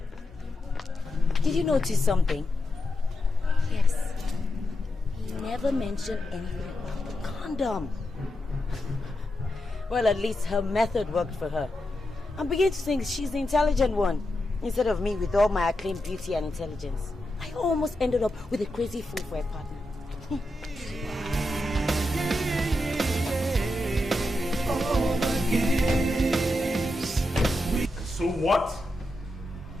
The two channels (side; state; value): both; normal; correlation 0.87